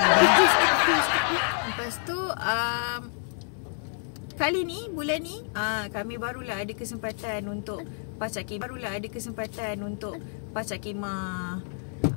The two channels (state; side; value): silent; right; 59 dB below the other